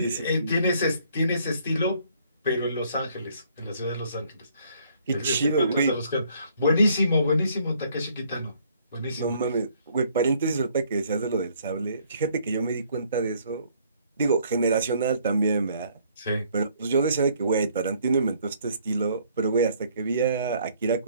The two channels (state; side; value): inverted; both; correlation -0.63